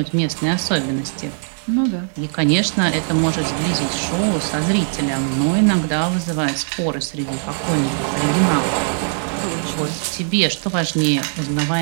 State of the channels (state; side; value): silent; left; 66 dB below the other